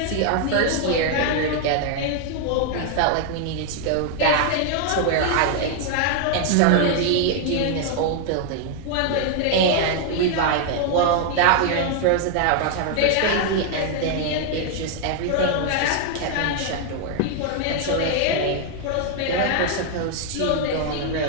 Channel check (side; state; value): both; different; correlation 0.00